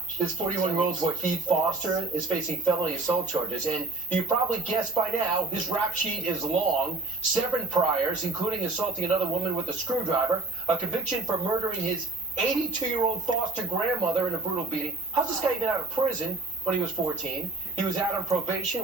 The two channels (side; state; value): left; quieter; 3.2 dB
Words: This 41-year-old Wahid Foster is facing felony assault charges, and you probably guessed by now, his rap sheet is long. 7 priors, including assaulting another woman with a screwdriver, a conviction for murdering his 82-year-old foster grandmother in a brutal beating. How's this guy even out of prison when he was 14? He was out on probation